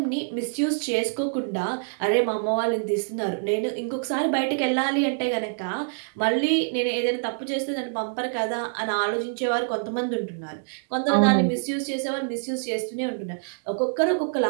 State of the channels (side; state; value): left; silent; digital silence